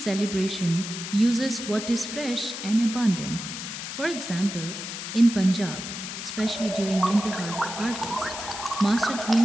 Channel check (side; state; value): left; noise; hiss, 7 dB below the sound